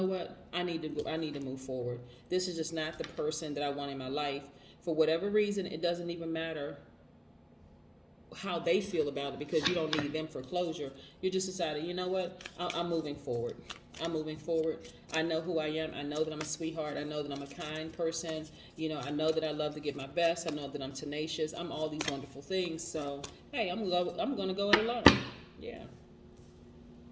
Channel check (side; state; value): both; identical; correlation 1.00